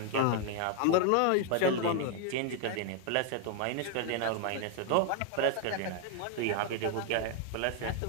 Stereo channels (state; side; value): different; both; correlation 0.00